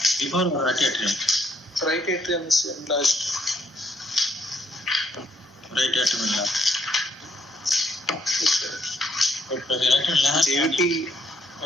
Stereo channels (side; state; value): both; normal; correlation 0.71